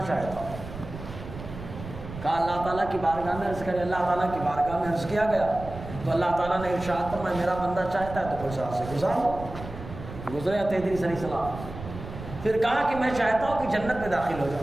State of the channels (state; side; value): noise; right; rumble, 12 dB below the sound